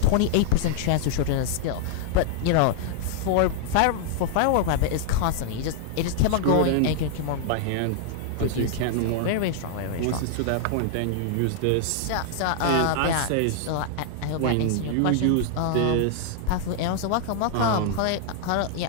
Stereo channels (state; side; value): different; both; correlation -0.01